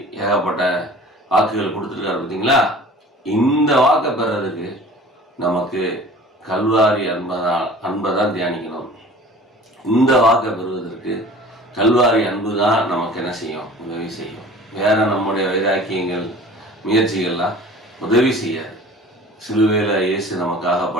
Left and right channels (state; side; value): normal; both; correlation 0.44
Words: ஏகப்பட்ட வாக்குகள் கொடுத்துருக்காரு பார்த்தீங்களா. இந்த வாக்கை பெறதுக்கு நமக்கு கல்வாரி அன்பை தான் தியானிக்கணும். இந்த வாக்கை பெறுவதற்கு கல்வாரி அன்பு தான் நமக்கு என்ன செய்யும், உதவி செய்யும். வேற நம்முடைய வைராக்கியங்கள் முயற்சிகள்லாம் உதவி செய்யாது. சிலுவையில் இயேசு